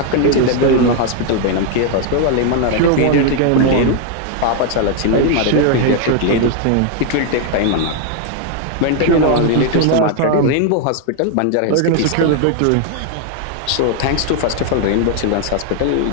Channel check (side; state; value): both; different; correlation 0.00